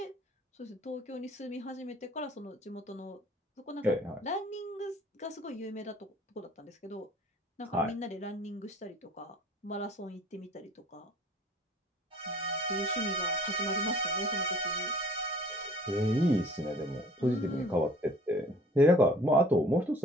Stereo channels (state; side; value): normal; both; correlation 0.52